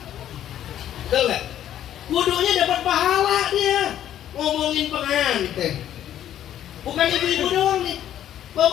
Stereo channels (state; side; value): quieter; right; 11.3 dB